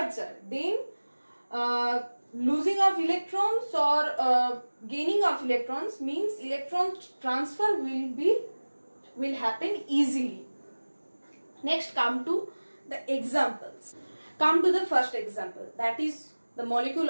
then losing of electrons or gaining of electrons means electron transfer will happen easily. Next, come to the examples. Come to the first example, that is the molecule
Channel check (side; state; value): both; inverted; correlation -1.00